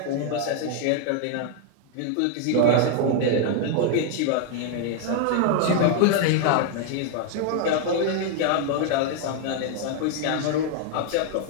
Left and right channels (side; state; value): both; different; correlation 0.00